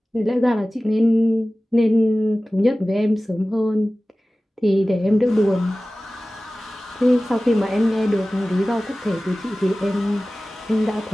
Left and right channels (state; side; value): normal; both; correlation 0.97